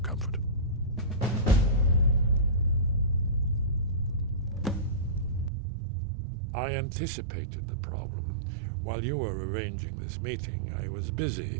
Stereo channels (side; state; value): left; drops out; at 5.5 s